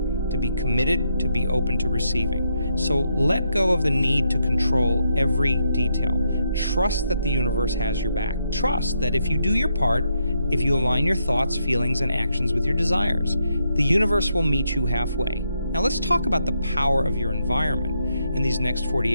be committed, to be open to receiving. So let go of the need to control every detail. Trust that the universe has your back. Trust that if you do your part, if you align your thoughts, feelings, and actions with your desires, the universe will meet you halfway. Now let's talk about the power of your environment. In these next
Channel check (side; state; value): both; inverted; correlation -0.78